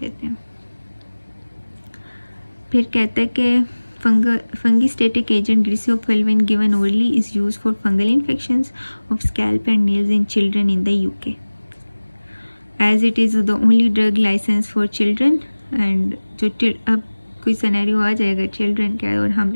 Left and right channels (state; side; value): inverted; both; correlation -1.00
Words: हैं। फिर कहता है कि fungistatic agent griseofulvin given orally is used for fungal infections of scalp and nails in children in the UK, as it is the only drug licensed for children। and जो अब कोई सिनेरियो आ जाएगा चिल्ड्रन का और